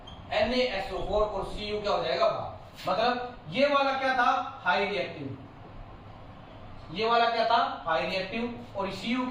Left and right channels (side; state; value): both; identical; correlation 1.00